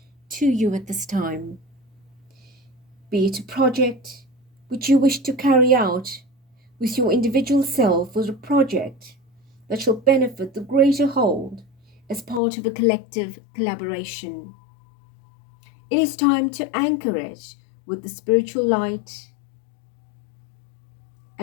to you at this time. Be it a project which you wish to carry out with your individual self, or a project that shall benefit the greater whole as part of a collective collaboration. It is time to anchor it with the spiritual light,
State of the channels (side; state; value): right; drops out; at 12.4 s